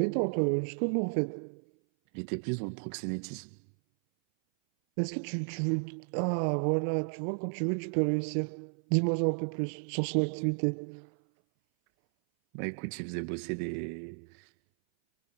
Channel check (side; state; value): left; silent; 56 dB below the other